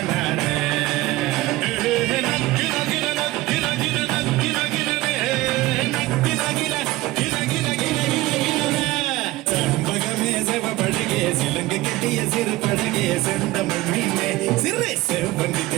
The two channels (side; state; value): left; quieter; 18.4 dB